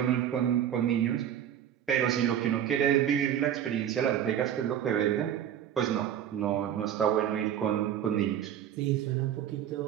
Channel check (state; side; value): quieter; left; 10.0 dB